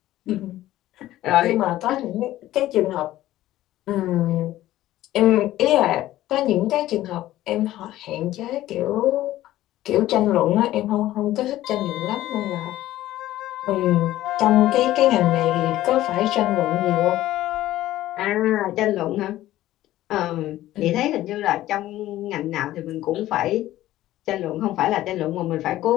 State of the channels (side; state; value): right; quieter; 14.8 dB